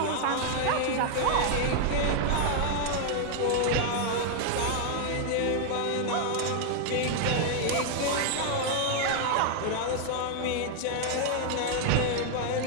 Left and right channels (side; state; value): both; different; correlation 0.00